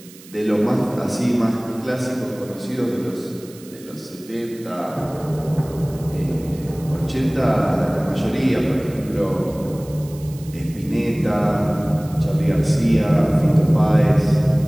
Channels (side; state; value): right; noise; hiss, 21 dB below the sound